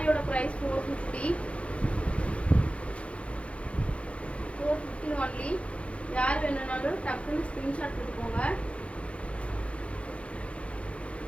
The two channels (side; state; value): right; late; 0.061 ms